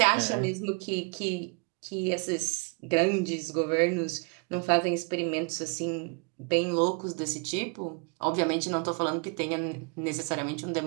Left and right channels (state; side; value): quieter; left; 33.9 dB